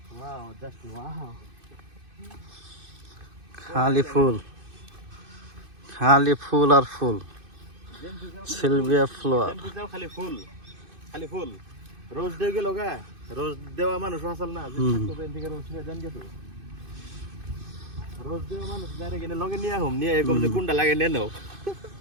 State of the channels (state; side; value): late; left; 2.5 ms